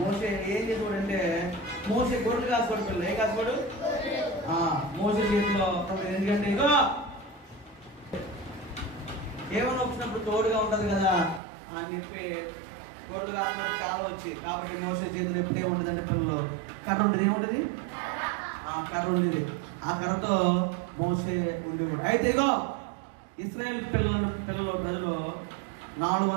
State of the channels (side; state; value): left; drops out; at 11.4 s